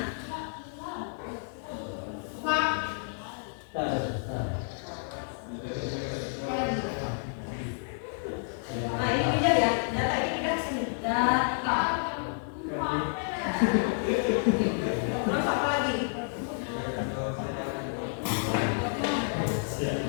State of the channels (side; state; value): right; silent; digital silence